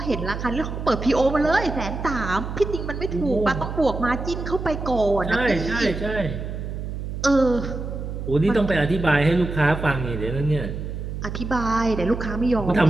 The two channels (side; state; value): right; noise; hum, 6 dB below the sound